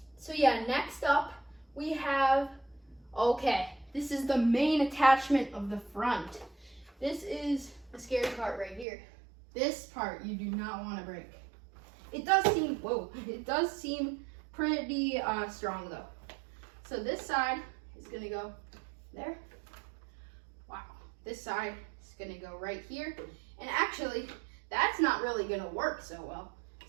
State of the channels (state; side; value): drops out; left; at 8.8 s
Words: So yeah, next up we have, okay, this is the main attachment of the front. This is the scary part right here. This part you do not want to break. It does seem, whoa, it does seem pretty strong though. So this side is gonna go there. Wow, this side is gonna go right here. And actually, that's not really gonna work so well.